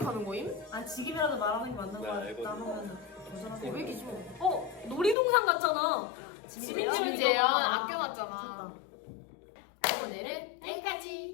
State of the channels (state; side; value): drops out; right; at 5.2 s